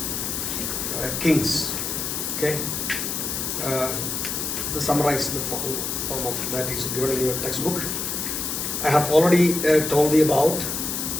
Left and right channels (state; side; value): noise; left; hiss, 2 dB below the sound